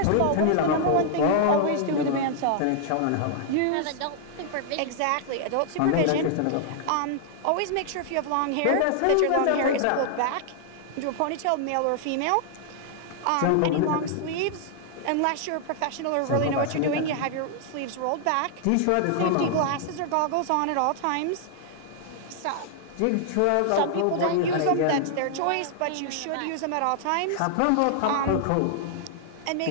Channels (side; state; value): both; different; correlation -0.01